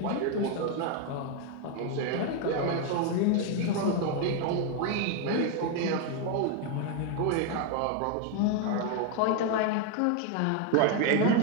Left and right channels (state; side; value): different; both; correlation 0.01